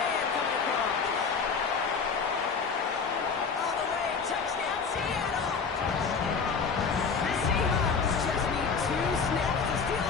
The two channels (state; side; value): quieter; right; 5.4 dB